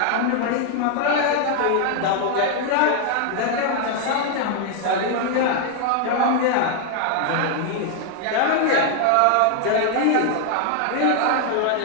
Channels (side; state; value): both; different; correlation 0.00